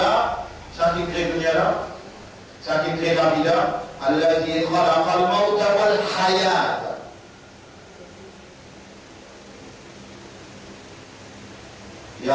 ça qui crée dunya là, ça qui crée la vie là, alladhi khalaqa al-mawta wal hayat. Ya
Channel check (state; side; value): identical; both; correlation 1.00